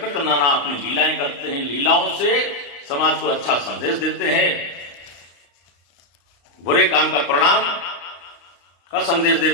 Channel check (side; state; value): right; late; 35 ms